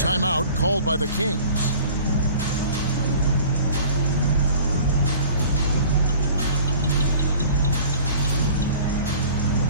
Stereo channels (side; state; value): both; inverted; correlation -0.46